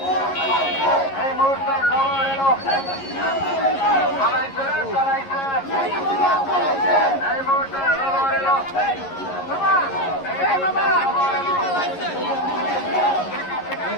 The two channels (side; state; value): right; late; 11 ms